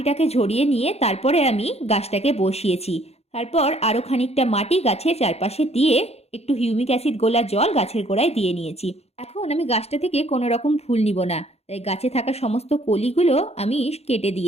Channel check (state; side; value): late; right; 0.30 ms